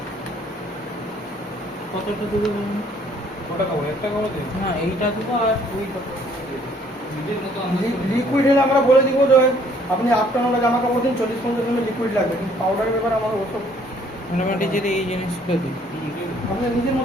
কতটা দেবো কটা খাবো একটা খাবো দিন না এইটা দেবো আর ওইটা নিজের মতো লিকুইড হলে আমরা বলে দিব যে আপনি আফটারনুনে জামা কাপড় দিন 40-50 মিনিট লিকুইড লাগবে, কিন্তু পাউডারের ব্যাপারে আমার ওসব মোটামুটি যদি এই জিনিসগুলো দিই আপনি নিজের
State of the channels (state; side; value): normal; both; correlation 0.61